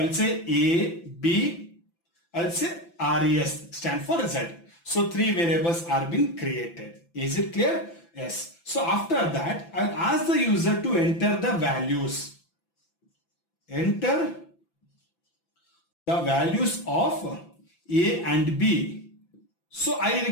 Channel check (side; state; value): right; late; 5.9 ms